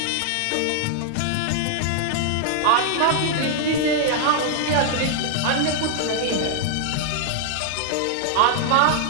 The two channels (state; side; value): different; both; correlation 0.00